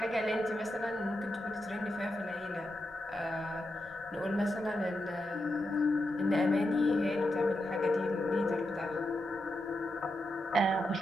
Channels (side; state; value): both; normal; correlation 0.87